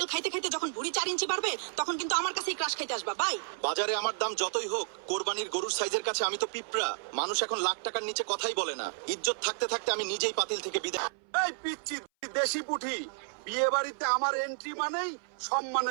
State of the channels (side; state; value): left; silent; 57 dB below the other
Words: খাইতে খাইতে যখন ভুঁড়ি 4 ইঞ্চি বাড়বে তখন কিন্তু আমার কাছেই ক্রাশ খাইতে আসবা। বাই। বাজারে আমার দাম যতই হোক, কোরবানির গরুর সাইজের কাছে আমি তো পিঁপড়া। মানুষ এখন লাখ টাকার নিচে কথাই বলে না। ইজ্জত থাকতে থাকতে আমি নিজেই পাতিল থেকে বিদায়। এই পিচ্চি দেশি পুঠি, বিয়ে বাড়িতে আমার এন্ট্রি মানেই